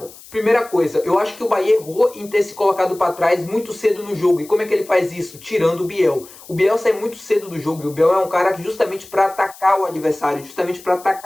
Primeira coisa, eu acho que o Bahia errou em ter se colocado para trás muito cedo no jogo. E como é que ele faz isso? Tirando o Biel. O Biel sai muito cedo do jogo, e o Biel é um cara que justamente para atacar o adversário, justamente para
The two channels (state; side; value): noise; left; hiss, 20 dB below the sound